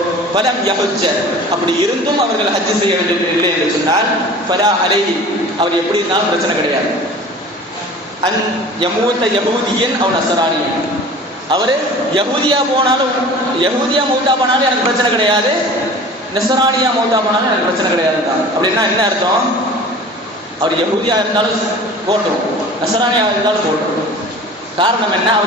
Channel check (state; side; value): normal; both; correlation 0.41